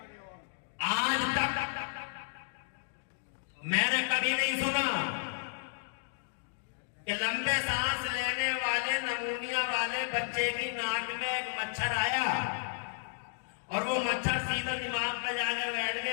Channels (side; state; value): right; silent; digital silence